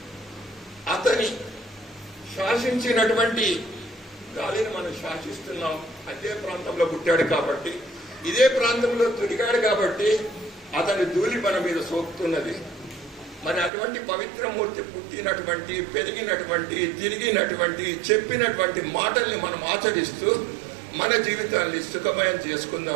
అతని శాసించినటువంటి గాలిని మనం శాసిస్తున్నాం. అదే ప్రాంతంలో పుట్టాడు కాబట్టి, ఇదే ప్రాంతంలో తిరిగాడు కాబట్టి అతని ధూళి మన మీద సోకుతున్నది. మరి అటువంటి పవిత్రమూర్తి పుట్టినటువంటి, పెరిగినటువంటి, తిరిగినటువంటి, చెప్పినటువంటి మాటల్ని మనం ఆచరిస్తూ మన జీవితాన్ని సుఖమయం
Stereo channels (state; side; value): drops out; left; at 13.7 s